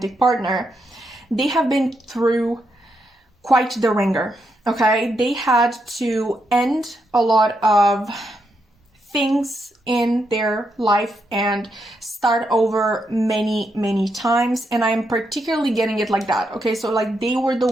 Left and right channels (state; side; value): normal; both; correlation 0.81